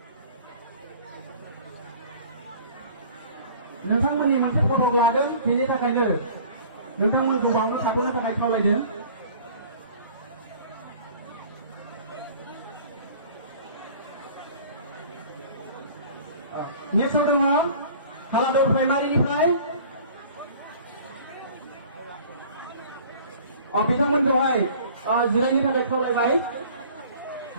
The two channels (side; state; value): both; inverted; correlation -0.47